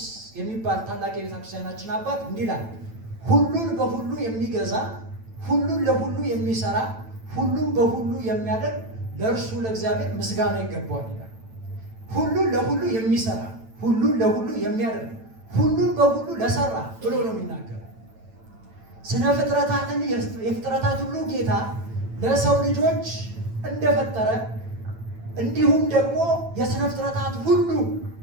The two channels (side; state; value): left; late; 9.0 ms